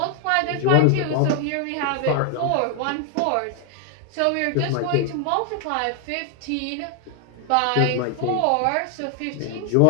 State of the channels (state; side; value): different; both; correlation 0.00